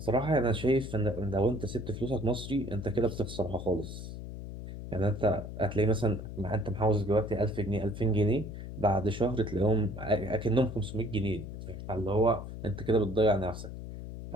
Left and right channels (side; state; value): left; noise; hum, 9 dB below the sound